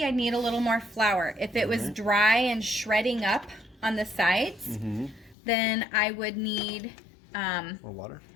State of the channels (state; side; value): drops out; right; at 5.4 s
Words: I'd need a little more flour. If it was dry and shredding up on the sides, then I would need more water?